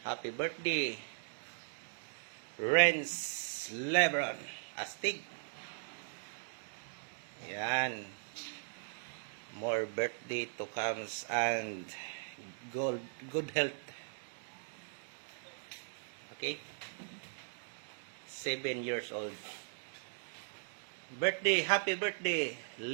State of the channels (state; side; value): silent; left; digital silence